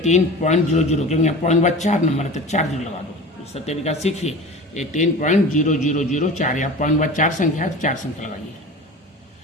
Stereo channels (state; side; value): normal; both; correlation 0.35